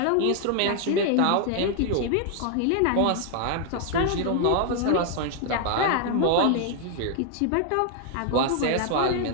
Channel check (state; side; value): different; both; correlation 0.00